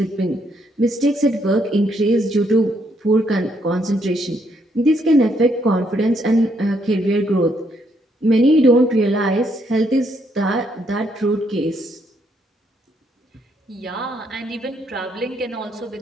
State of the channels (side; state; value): both; normal; correlation 0.73